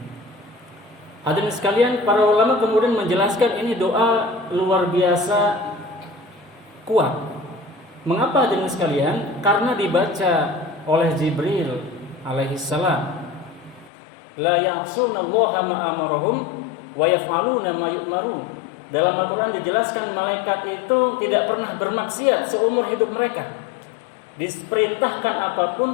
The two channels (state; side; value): drops out; right; at 13.9 s